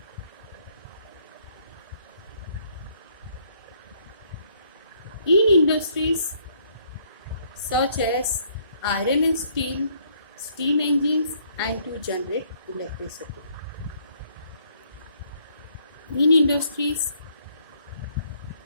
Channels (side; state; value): both; inverted; correlation -0.66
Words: In industries such as iron and steel, steam engines, and to generate electricity. In industries,